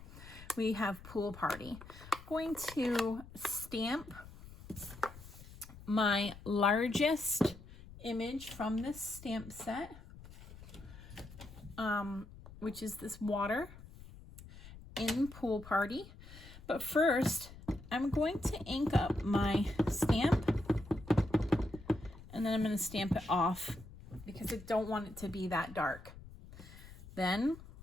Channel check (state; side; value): noise; left; rumble, 17 dB below the sound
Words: We have Pool Party. I'm going to stamp my largest image from this stamp set, which is this water in Pool Party. But first, I'm going to ink up my stamp, and then I'm going to stamp it off because I don't want it to be that dark. Then